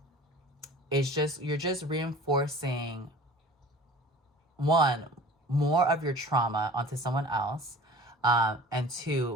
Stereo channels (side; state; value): both; normal; correlation 0.42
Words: you're just reinforcing, one, more of your trauma onto someone else. And